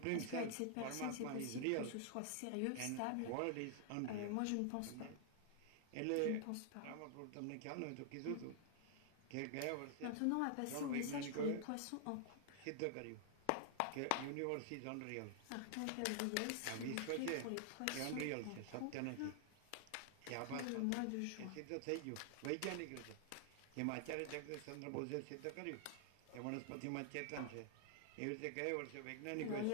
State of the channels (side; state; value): both; different; correlation 0.00